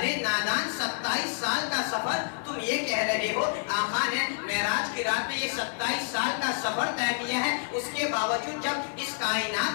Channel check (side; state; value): right; silent; 59 dB below the other